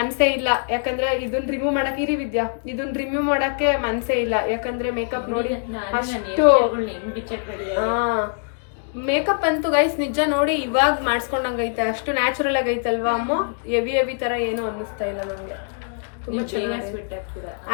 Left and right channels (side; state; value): right; silent; digital silence